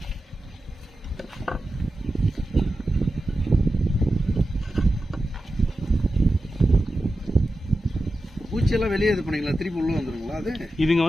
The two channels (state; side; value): normal; both; correlation 0.92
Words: பூச்சியெல்லாம் வெளியே இது பண்ணீங்களா, திருப்பி உள்ள வந்துருங்களா? அது இதுங்க